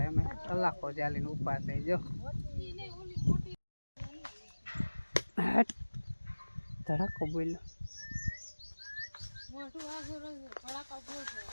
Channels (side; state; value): both; inverted; correlation -1.00